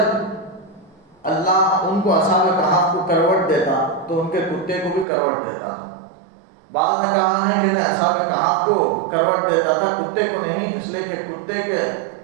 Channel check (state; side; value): drops out; left; at 5.1 s